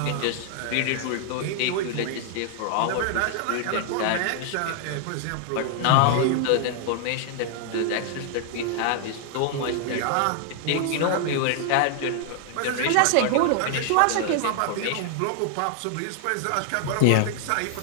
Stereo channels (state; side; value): different; both; correlation 0.00